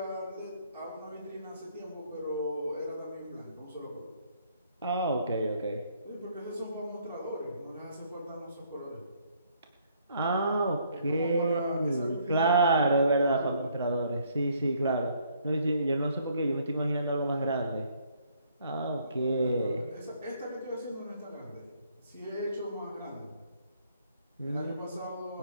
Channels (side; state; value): both; inverted; correlation -0.66